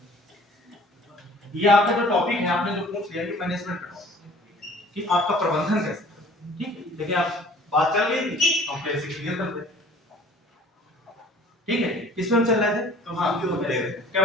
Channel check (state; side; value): normal; both; correlation 0.51